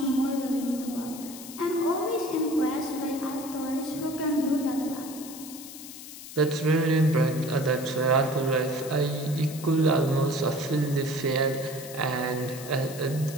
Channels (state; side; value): noise; left; hiss, 13 dB below the sound